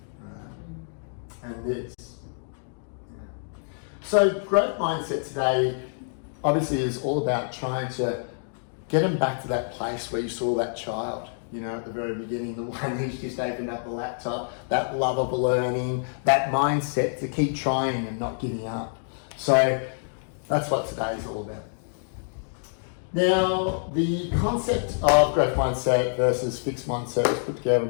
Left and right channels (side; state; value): right; silent; digital silence